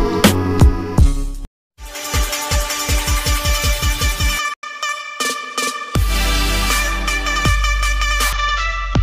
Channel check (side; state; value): both; identical; correlation 1.00